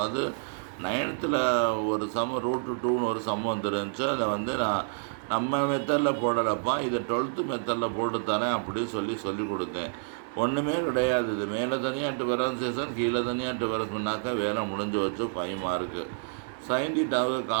9th ஒரு சம்மு √2ன்னு ஒரு சம்மு வந்துருந்துச்சு. அதை வந்து நான் நம்ம மெத்தடில் போடலப்பா, இதை 12th மெத்தடில் போட்டு தரேன் அப்படின்னு சொல்லி கொடுத்தேன். ஒன்றுமே கிடையாது. இது மேலே தனியாக டிஃபரன்சியேஷன் கீழே தனியாக டிஃபரன்ஸ்னாக்கா வேலை முடிஞ்சு வச்சு 5 மார்க்கு. சைன் தீட்டாவுக்கு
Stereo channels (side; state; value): left; silent; digital silence